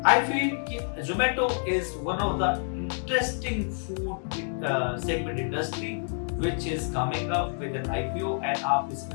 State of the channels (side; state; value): right; silent; digital silence